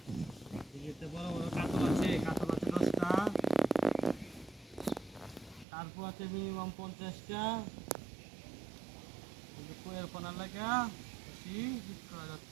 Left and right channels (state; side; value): drops out; left; at 5.7 s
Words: এতে বড় বড় কাতল আছে, কাতল আছে 10টা, তারপর আছে মিনিমাম 50টা। কিন্তু কোয়ের পোনা লাগা বেশি হিট করা